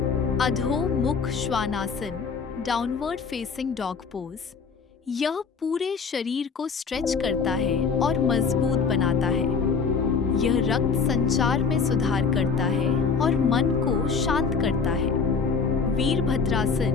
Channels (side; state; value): right; quieter; 5.4 dB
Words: अधोमुख Shvanasana, downward facing dog pose. यह पूरे शरीर को स्ट्रेच करता है और मजबूत बनाता है। यह रक्त संचार में सुधार करता है और मन को शांत करता है।